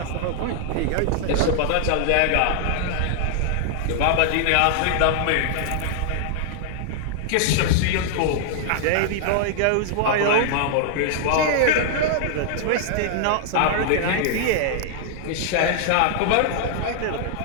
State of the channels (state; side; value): different; both; correlation 0.00